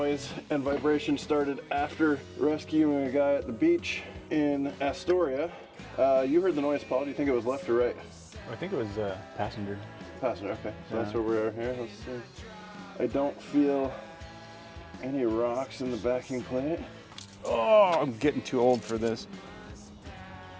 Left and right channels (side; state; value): both; identical; correlation 1.00